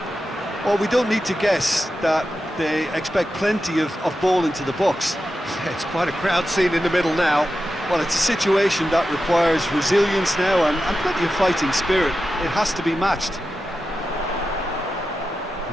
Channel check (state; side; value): normal; both; correlation 0.91